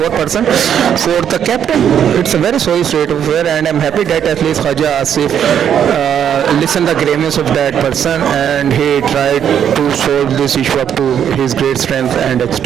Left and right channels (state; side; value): quieter; left; 9.0 dB